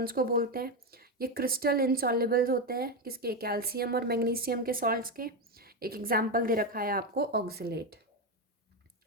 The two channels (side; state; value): both; normal; correlation 0.10